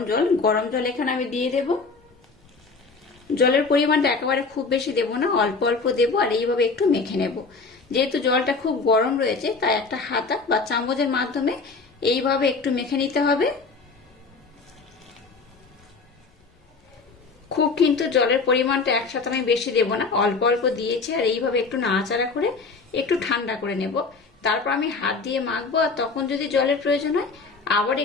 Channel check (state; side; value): quieter; right; 4.3 dB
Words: জল। গরম জল এখানে আমি দিয়ে দেব। জলের পরিমাণটা একেবারে খুব বেশি দেব না, অল্প অল্প দেব আর এইভাবে একটু মেখে নেব। যেহেতু জলটা খুব গরম রয়েছে তাই একটা হাতা বা চামচের মাধ্যমে এইভাবে একটু মেখে নিতে হবে। খুব কিন্তু জলের পরিমাণটা একসাথে আমি বেশি দেব না, অল্প অল্প দিয়েছি আর এইভাবে একটু নাড়াচাড়া করে একটু ঠান্ডা করে নেব। তারপর আমি হাত দিয়ে মাখবো আর তখন যদি জলের প্রয়োজন হয় আবার